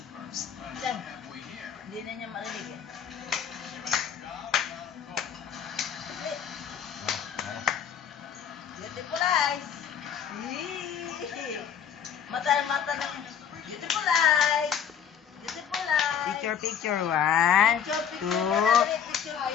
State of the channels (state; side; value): quieter; right; 8.2 dB